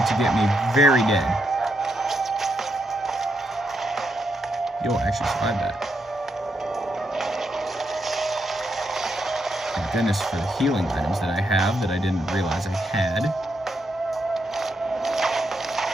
get me very dead. You'll actually survive that. Thank goodness for the healing items that I have that I didn't realize I had.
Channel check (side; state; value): both; normal; correlation 0.80